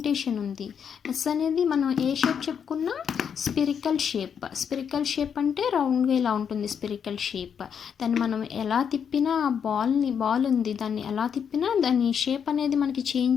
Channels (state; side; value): quieter; right; 7.5 dB